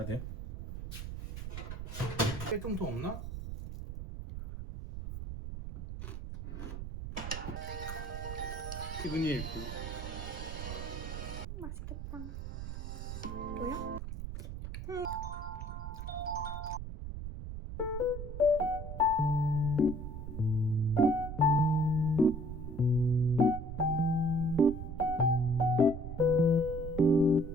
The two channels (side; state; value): right; noise; rumble, 7 dB below the sound